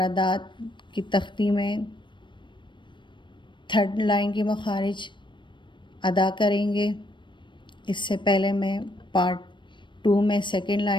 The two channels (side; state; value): right; late; 0.23 ms